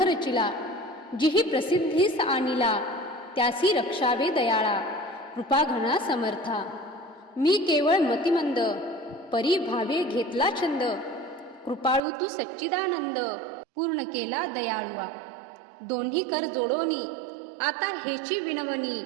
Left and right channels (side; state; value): left; drops out; at 12.0 s